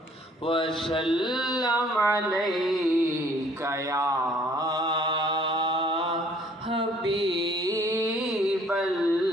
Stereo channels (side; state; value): both; normal; correlation 0.59